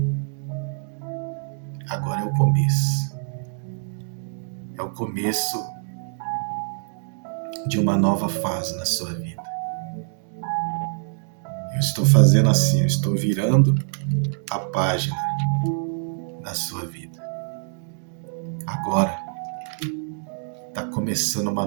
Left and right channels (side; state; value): left; silent; digital silence